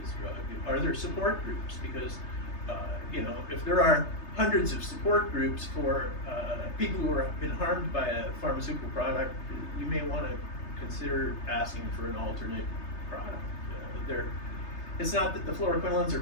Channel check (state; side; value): late; right; 3.3 ms